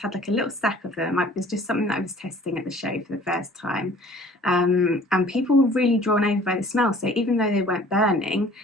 had like a little stack of them. It was just something that I was testing at the show for the first time. And people were really drawn over by the smell. So even though they weren't burning,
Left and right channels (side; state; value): both; normal; correlation 0.51